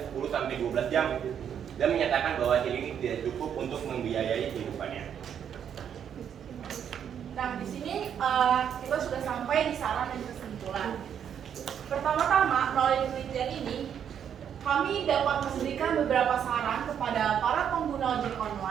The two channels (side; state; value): left; quieter; 8.6 dB